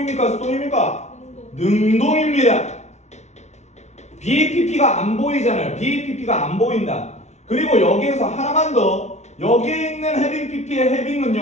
수동입니까? 능동입니다. BPP가 안 보이잖아요. BPP가 안 보인다. 그리고 여기에서 하나만 더. 여기에 있는 having pp의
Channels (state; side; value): late; right; 0.32 ms